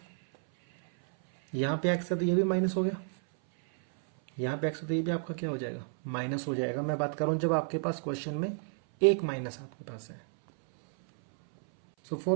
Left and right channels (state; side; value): silent; left; 57 dB below the other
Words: यहाँ पे x है तो ये भी माइनस हो गया, यहाँ पे x है तो ये भी आपका क्या हो जाएगा माइनस हो जाएगा। मैं बात कर रहा हूँ जब आपके पास क्वेश्चन में एक माइनस आपके पास है। सो